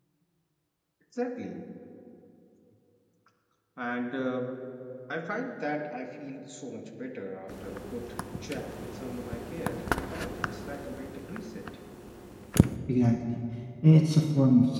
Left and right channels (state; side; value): identical; both; correlation 1.00